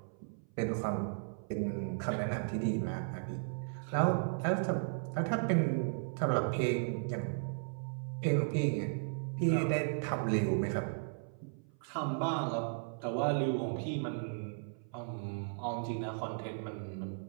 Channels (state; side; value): silent; left; 54 dB below the other